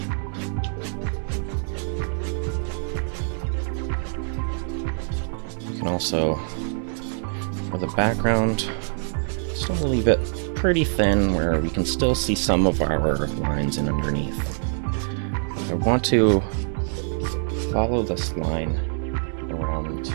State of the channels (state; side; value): silent; left; digital silence